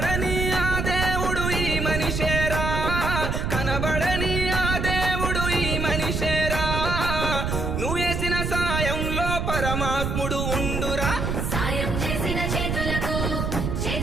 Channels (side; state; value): right; noise; rumble, 1 dB below the sound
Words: ఆ దేవుడు ఈ మనిషేరా. కనబడని ఆ దేవుడు ఈ మనిషేరా. నువ్వు వేసిన సాయంలో పరమాత్ముడు ఉండురా. సాయం చేసిన చేతులకు